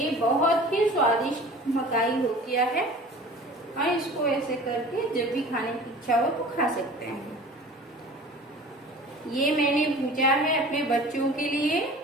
बहुत ही स्वादिष्ट मकाई हो गया है। और इसको ऐसे करके जब भी खाने की इच्छा हो तो खा सकते हैं। ये मैंने भूजा है अपने बच्चों के लिए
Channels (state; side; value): normal; both; correlation 0.42